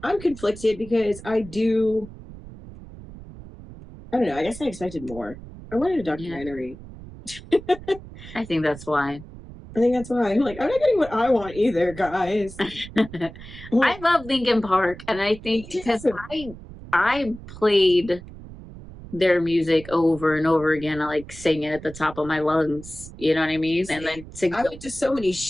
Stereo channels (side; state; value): right; noise; rumble, 16 dB below the sound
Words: I'm conflicted because I don't know. I guess I expected more. I wanted a documentary. Yeah. I think that's why. I'm not getting what I want either, guys. I love Linkin Park, and I think because I played their music over and over again. I like sing it at the top of my lungs. You know what I mean? And then I went to so many